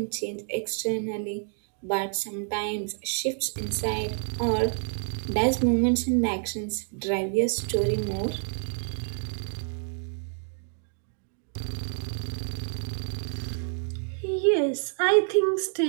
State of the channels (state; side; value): silent; left; 55 dB below the other